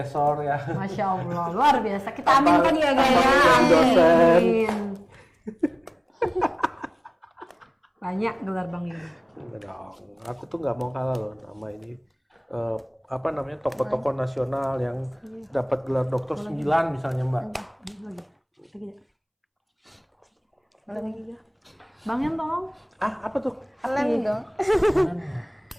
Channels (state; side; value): identical; both; correlation 1.00